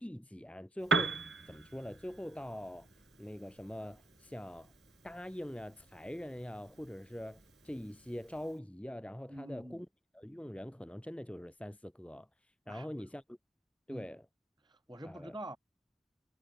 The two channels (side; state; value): both; normal; correlation 0.77